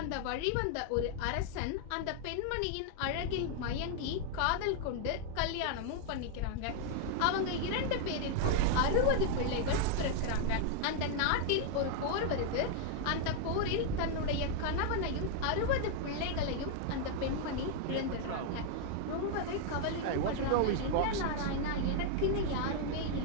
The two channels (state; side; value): different; both; correlation 0.00